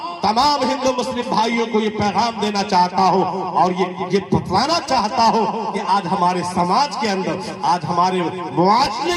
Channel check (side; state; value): both; identical; correlation 1.00